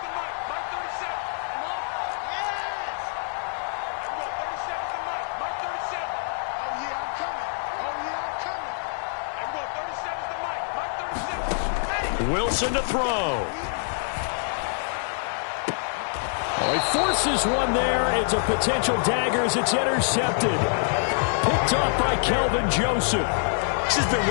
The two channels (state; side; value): silent; right; digital silence